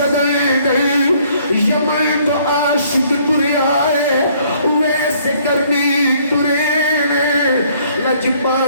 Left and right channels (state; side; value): inverted; both; correlation -0.63